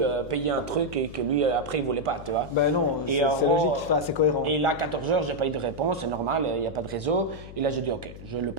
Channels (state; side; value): noise; left; hum, 14 dB below the sound